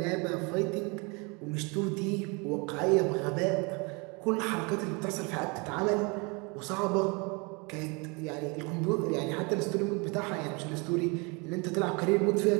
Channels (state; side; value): quieter; left; 29.9 dB